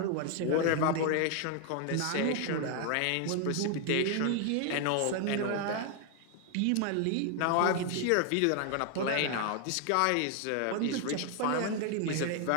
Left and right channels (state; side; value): different; both; correlation 0.00